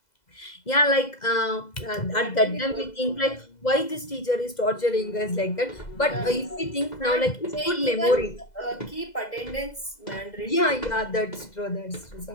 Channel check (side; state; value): right; late; 2.0 ms